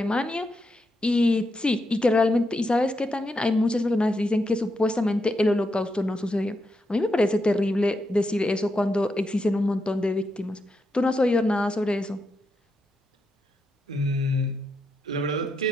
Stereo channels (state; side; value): normal; both; correlation 0.84